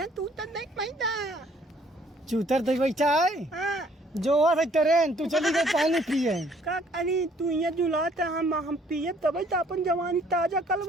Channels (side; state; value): both; normal; correlation 0.61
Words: तू तो नहीं पैदा। चूतर दे बैठा है। हाँ। जो है ट्रेन तू चली गई पानी पिए। का अरे तू यहाँ जुलात है, हम पिए तब तो अपन जवानी ताजा